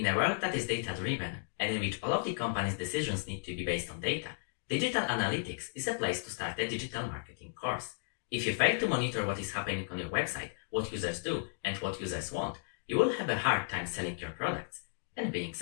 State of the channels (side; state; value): right; silent; digital silence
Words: a world that is data-driven, and in which all of the company's decisions need to be based on data, digital analytics is a place to start a digital marketing course. If you fail to monitor what is happening on your website, what users do, and what users want, you will have a hard time selling your products and being